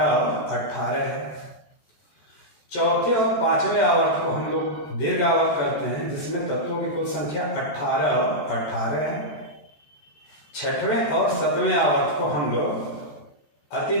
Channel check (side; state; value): right; late; 14 ms